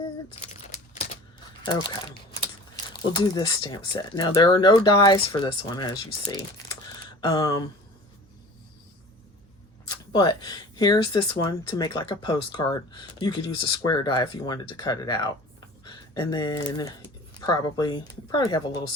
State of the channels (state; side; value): normal; both; correlation 0.42